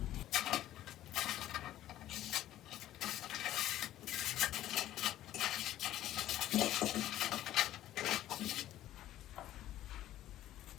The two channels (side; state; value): right; quieter; 13.4 dB